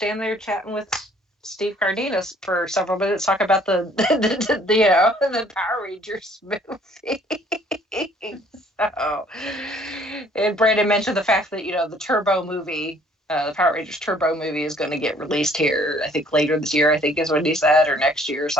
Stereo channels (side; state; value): both; normal; correlation 0.59